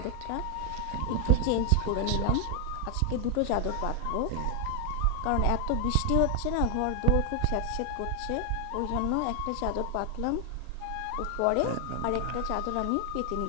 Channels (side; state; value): both; different; correlation 0.00